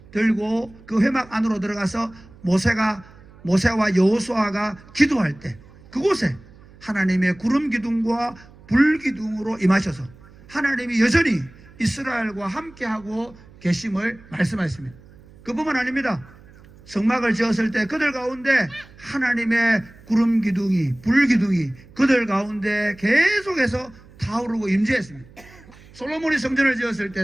들고 그 회막 안으로 들어가서 모세와 여호수아가 기도할 때 그곳에 하나님의 구름 기둥과 불 기둥으로 임하셔서 하나님이 여전히 이스라엘과 함께하고 계심을 말씀하셨습니다. 그뿐만 아닙니다. 성막을 지었을 때 그들 가운데 하나님의 구름 기둥이 불 기둥이 그들 가운데 계속해서 타오르고 임재했습니다. 솔로몬이 성전을 지었을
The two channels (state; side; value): noise; right; hum, 23 dB below the sound